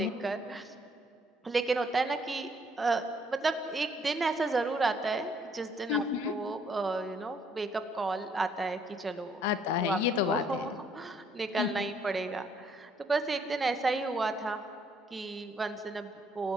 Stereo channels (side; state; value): both; normal; correlation 0.66